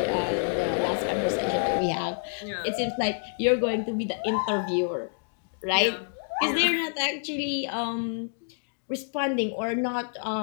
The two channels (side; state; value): right; silent; digital silence